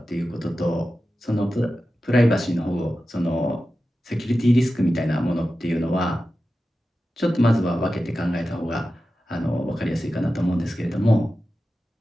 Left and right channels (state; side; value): normal; both; correlation 0.93